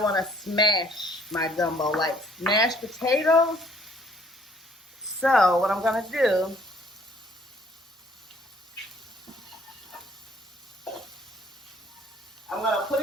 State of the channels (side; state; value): both; normal; correlation 0.60